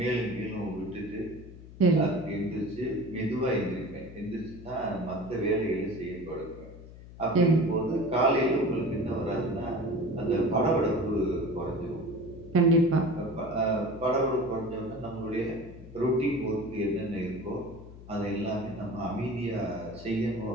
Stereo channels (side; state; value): left; noise; hum, 16 dB below the sound